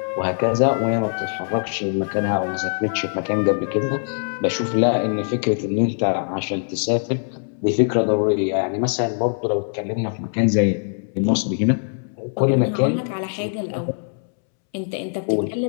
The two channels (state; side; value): silent; right; 64 dB below the other